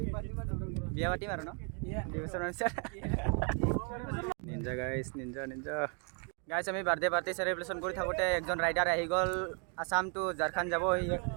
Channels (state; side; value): quieter; left; 39.3 dB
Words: বিয়া পাতিম আৰু ন নিঞ্জা গাইছ আমি বাৰ্থডে চেলিব্ৰেশ্যন কৰি থাকোঁতে একজন ৰাইডাৰ আহি গ'ল আসাম টু ঝাৰখণ্ড যাব